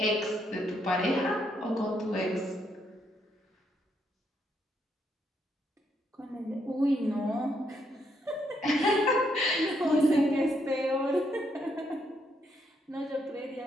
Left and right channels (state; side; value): normal; both; correlation 0.75